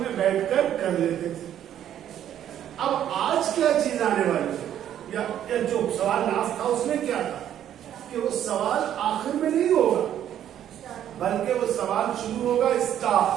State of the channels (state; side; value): quieter; left; 10.7 dB